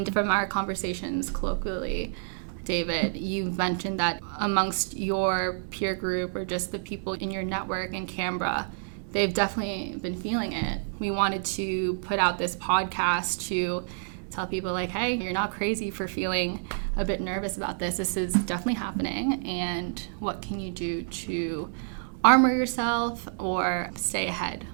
from our conversations colloquially, David, you mentioned that amongst your peer group or just the people in your network in Canberra, they've definitely been feeling it. We wanted to put out this podcast to tell people like, hey, you're not crazy for feeling a bit nervous about this. This is definitely happening. And what can you do to armor yourself or stay ahead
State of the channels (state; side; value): silent; left; digital silence